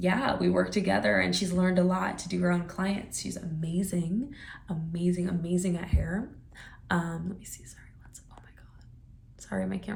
we work together, and she's learned a lot to do her own clients. She's amazing, amazing, amazing at hair. Let me see, sorry, oh my God. Sorry, my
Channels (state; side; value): identical; both; correlation 1.00